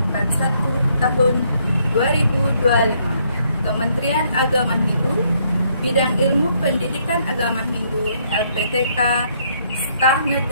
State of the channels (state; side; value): inverted; both; correlation -0.70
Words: 41 tahun 2025, Kementerian Agama Hindu, Bidang Ilmu Pendidikan Agama Hindu, LPTK, Staf